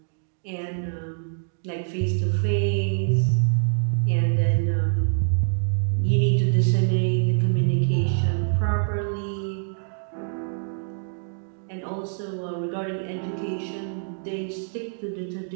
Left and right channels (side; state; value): left; silent; digital silence